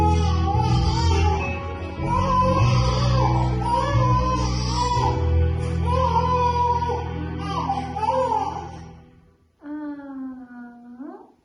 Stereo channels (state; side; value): identical; both; correlation 1.00